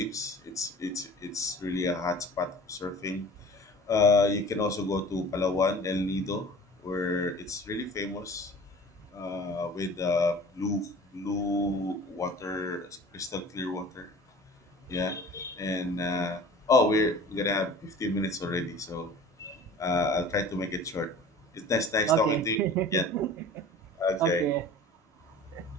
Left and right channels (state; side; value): normal; both; correlation 0.43